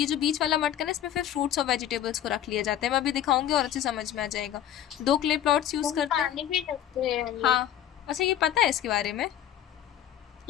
बीच वाला मटका है इसमें फिर फ्रूट्स और वेजिटेबल्स को रख लिया जाता है। मैं अभी दिखाऊंगी और अच्छे समझ में आ जाएगा। 2 क्ले प्लॉट्स यूज करते हैं। पानी भी रखते हैं हम लोग। हाँ, अच्छा ये पता है इसके बारे में?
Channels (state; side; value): quieter; right; 10.9 dB